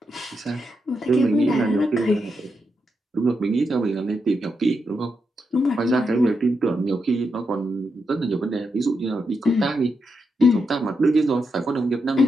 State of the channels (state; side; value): normal; both; correlation 0.84